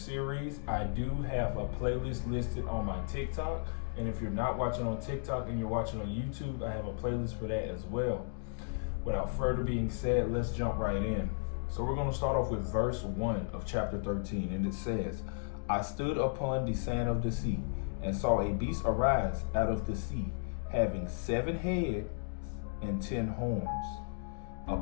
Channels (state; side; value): silent; right; digital silence